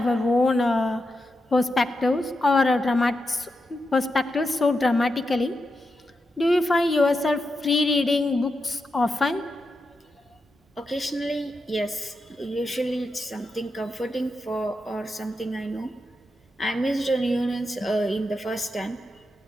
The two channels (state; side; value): normal; both; correlation 0.87